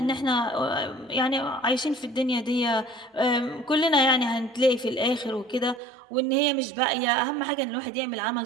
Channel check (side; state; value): left; drops out; at 5.8 s